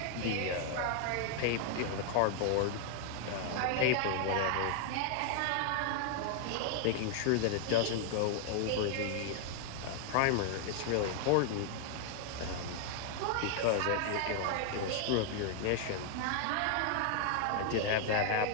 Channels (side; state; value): both; different; correlation 0.00